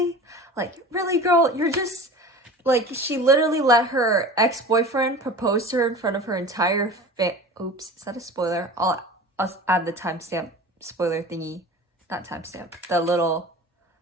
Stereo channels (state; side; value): normal; both; correlation 0.37